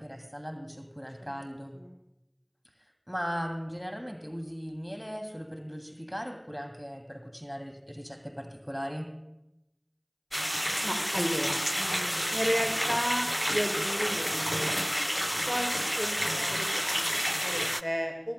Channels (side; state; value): both; identical; correlation 1.00